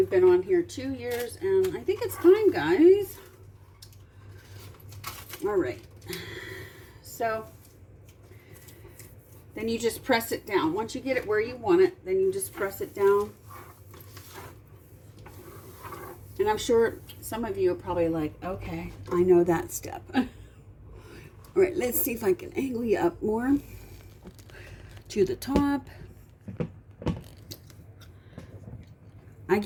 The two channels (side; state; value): both; identical; correlation 1.00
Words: been on here 2 years, and I think it's time, guys. All right. So then you just press it down. Once you get it where you want it, then you just press it down. And I'm sure some of you are probably like, okay, I know that step. All right, let's see if I can angle you up more to the top. I